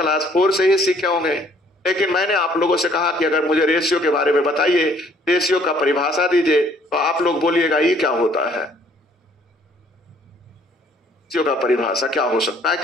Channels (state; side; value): normal; both; correlation 0.61